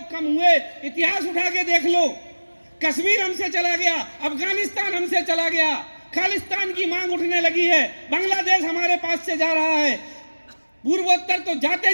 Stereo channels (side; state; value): both; inverted; correlation -1.00